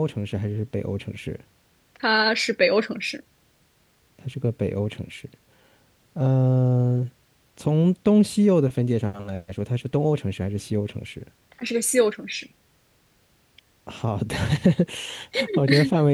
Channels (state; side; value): identical; both; correlation 1.00